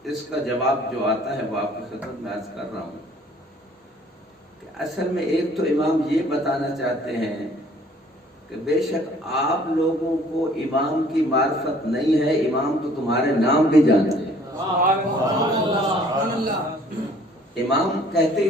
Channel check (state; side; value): normal; both; correlation 0.56